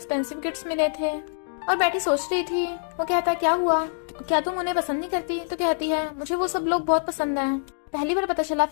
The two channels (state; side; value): silent; right; digital silence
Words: गिफ्ट्स मिले थे और बैठी सोच रही थी। वो कहता है, क्या हुआ, क्या तुम उन्हें पसंद नहीं करती? तो कहती है, मुझे वो सब लोग बहुत पसंद है, पहली बार पता चला